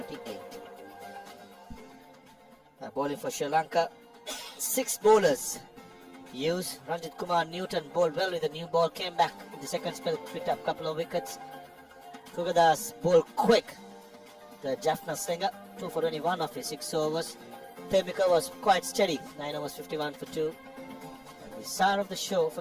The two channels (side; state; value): both; identical; correlation 1.00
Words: Bowling for Sri Lanka. 6 bowlers. Hughes, Ranjit Kumar, Newton bowled well with the new ball. Came back in the second spell, picked up a couple of wickets. Kugadas bowled quick. The Jaffna Slinger, 2 for 21 of his 6 overs. Temika was quite steady, 9 overs, 51 for 2. And the star of the show